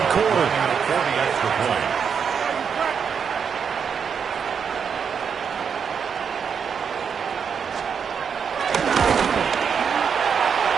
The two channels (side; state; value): left; quieter; 6.8 dB